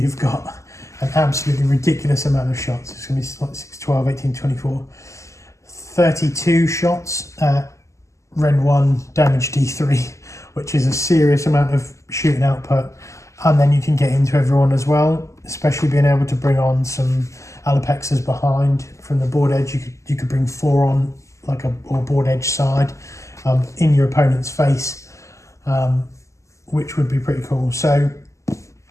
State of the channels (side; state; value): right; late; 0.15 ms